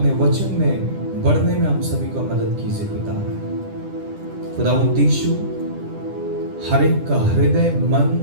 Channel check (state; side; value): late; left; 10 ms